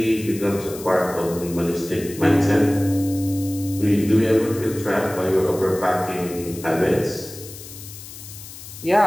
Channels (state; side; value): noise; left; hiss, 15 dB below the sound